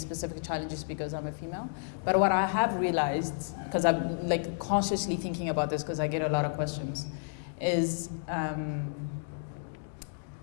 challenges because I'm a female, but what I have realized, because I'm consciously thinking about this because I get a lot of questions, is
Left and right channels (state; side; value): silent; right; digital silence